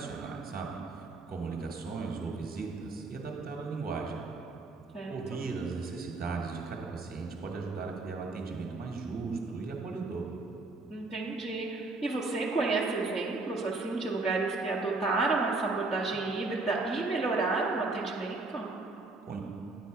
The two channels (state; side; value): quieter; left; 3.4 dB